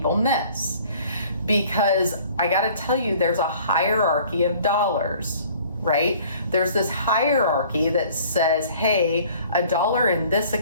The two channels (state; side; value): inverted; both; correlation -0.52